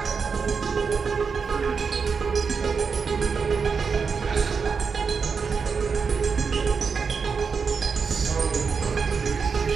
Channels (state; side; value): quieter; left; 5.6 dB